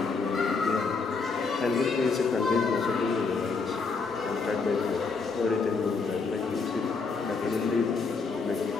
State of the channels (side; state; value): right; quieter; 4.6 dB